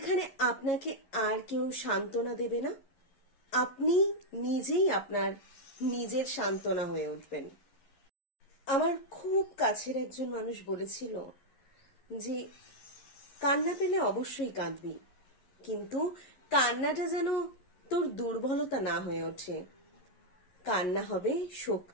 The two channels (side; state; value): right; late; 11 ms